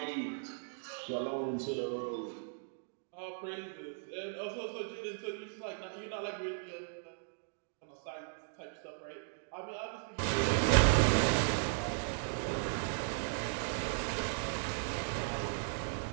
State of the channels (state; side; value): silent; left; digital silence